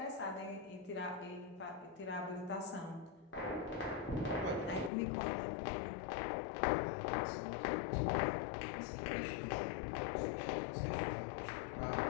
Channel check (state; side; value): drops out; right; at 4.9 s